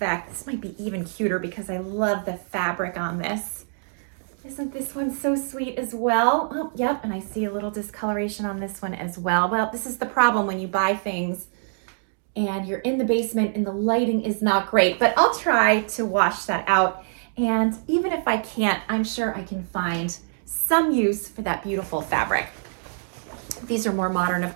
This might be even cuter because I love the fabric on this. Isn't this one so sweet as well? Oh, yep, and I see a little discoloration on this one as well. Well, this is the problem when you buy things and you're in the basement and the lighting is not great, but I'll try to wash that out. And even if I can't, I'm sure I can find some use for that beautiful fabric. These are more modern,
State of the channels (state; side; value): silent; left; digital silence